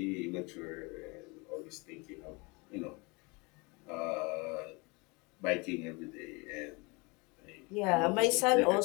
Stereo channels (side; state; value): right; quieter; 27.7 dB